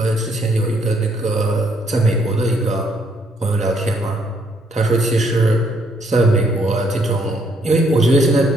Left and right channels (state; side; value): normal; both; correlation 0.70